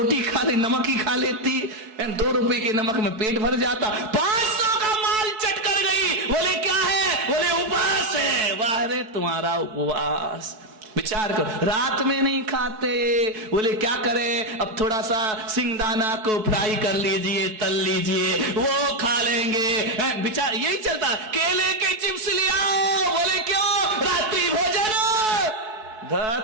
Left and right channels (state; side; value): late; left; 4.6 ms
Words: खा ले, नमक ही खा लेती। 2 रुपए के नमक में पेट भर जाता, 500 का माल चट कर गई। बोले क्या है? बोले उपवास है। वाह रे तुम्हारा उपवास। विचार करो, रात में नहीं खाते। बोले क्या करें? अब थोड़ा सा सिंगदाना को फ्राई कर लीजिए, तल लीजिए, वो खा लेंगे। विचार यही चलता। केले के चिप्स ले आओ। बोले क्यों? रात्रि भोजन।